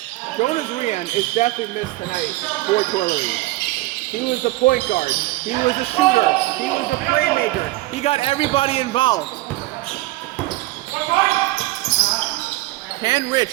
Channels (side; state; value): left; quieter; 19.0 dB